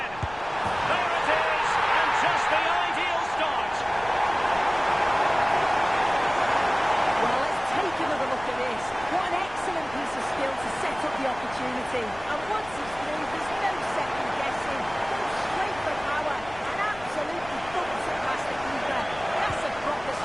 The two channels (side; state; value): left; noise; rumble, 18 dB below the sound